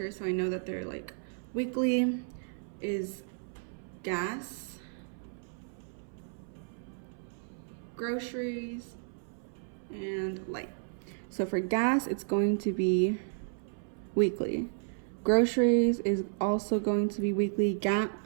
so I know that they're like weekly, is gas, groceries, and light. So for gas, it's going to be weekly. Groceries is also going to be weekly.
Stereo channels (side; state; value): left; silent; 56 dB below the other